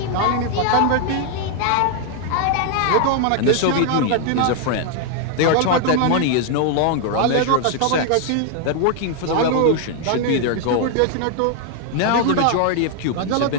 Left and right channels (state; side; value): different; both; correlation 0.00